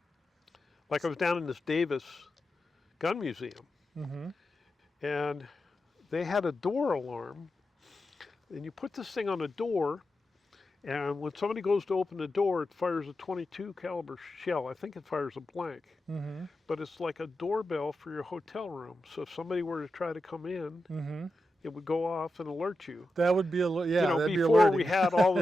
Like I was down in this Davis gun museum, Mm-hmm. and they had a door alarm, and you put this thing on a door, and when somebody goes to open the door, it fires a 22 caliber shell. I think it fires a blank, Mm-hmm. but it's like a doorbell for your hotel room. So if somebody were to try to come in, Mm-hmm. it would go off and alert you. That would be You know, that'd be before alerting. we had all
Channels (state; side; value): normal; both; correlation 0.90